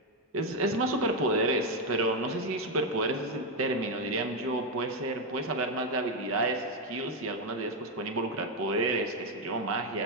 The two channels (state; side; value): normal; both; correlation 0.05